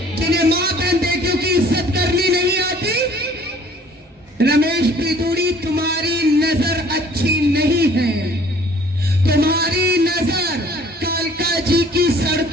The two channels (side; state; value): both; normal; correlation 0.54